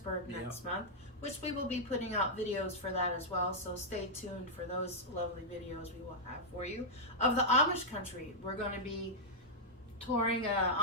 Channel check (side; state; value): both; normal; correlation -0.07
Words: next month, which we will be putting out videos for that as well. So stay tuned for those lovely videos we will have for you of the Amish country. We're going to be touring an